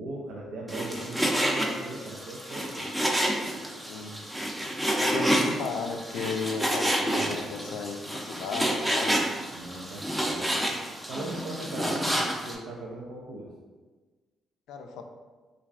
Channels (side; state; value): both; normal; correlation 0.83